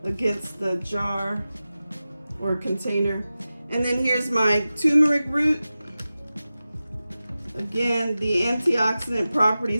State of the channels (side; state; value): both; inverted; correlation -0.95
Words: against the jar or container. And then here's my turmeric root. Again, the antioxidant